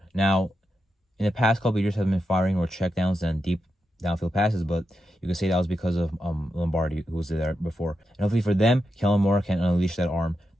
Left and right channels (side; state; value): both; normal; correlation 0.87